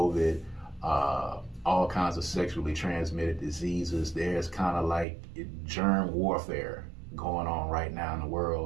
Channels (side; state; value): left; drops out; at 5.1 s